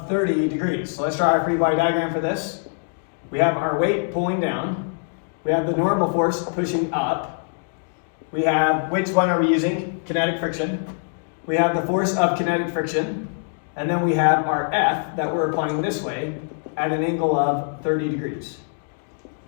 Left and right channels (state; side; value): silent; right; digital silence